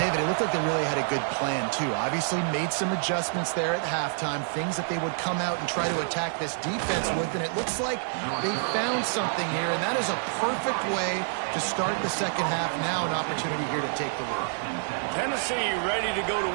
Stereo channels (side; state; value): left; silent; digital silence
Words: it looked like they really had a good plan, too. Obviously made some adjustments there at halftime, things that they would come out and try to attack this defense with, and it looks like they found something here, and that is a perfect way to start the second half. Now an opportunity here to take the lead. Tennessee ready to go to